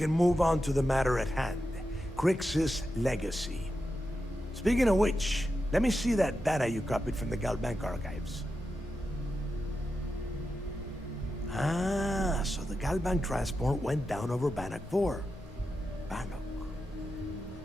move on to the matter at hand. Crix's legacy. Speaking of which, let me see that data you copied from the GalBank archives. Ah, so the GalBank transport went down over Bannock 4. Bannock.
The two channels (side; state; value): both; normal; correlation 0.89